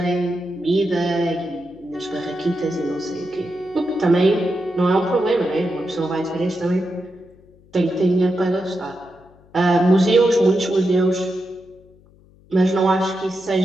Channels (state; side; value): noise; left; hum, 28 dB below the sound